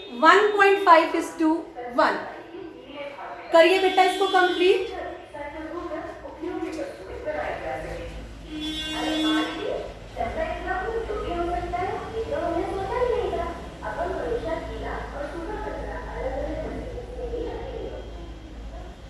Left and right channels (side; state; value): both; identical; correlation 1.00